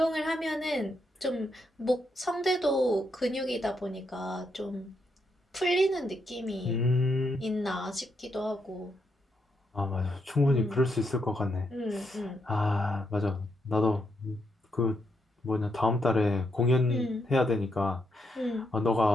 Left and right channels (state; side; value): normal; both; correlation 0.80